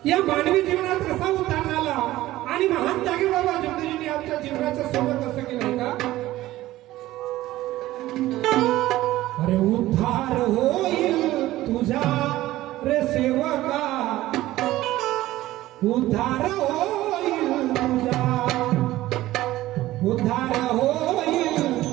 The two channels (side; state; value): left; quieter; 16.0 dB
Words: या मानवी जीवनात कसा उतार आला आणि महान त्यागी बाबा जगदीजींनी आमच्या जीवनाचं सोबत असं केलं का? अरे उद्धार होईल तुझा रे सेवका उद्धार होईल तुझा उद्धार होईल